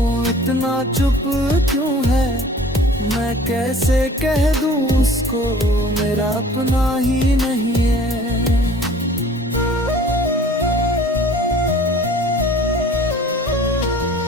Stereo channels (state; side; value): normal; both; correlation 0.48